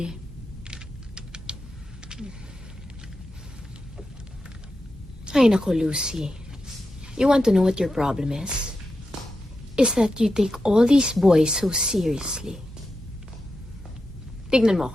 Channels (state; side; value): normal; both; correlation 0.89